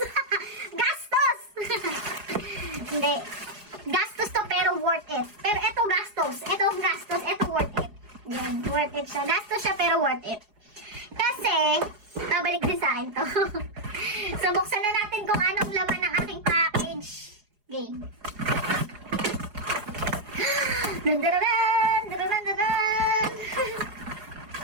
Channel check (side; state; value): left; late; 4.8 ms